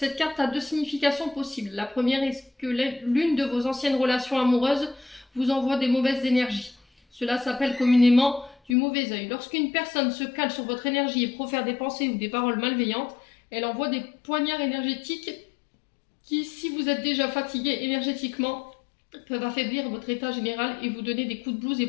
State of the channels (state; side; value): drops out; right; at 8.8 s